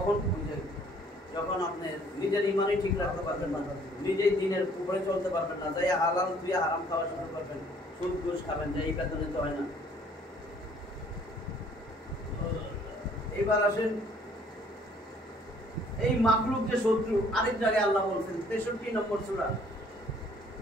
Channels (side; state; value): both; normal; correlation 0.59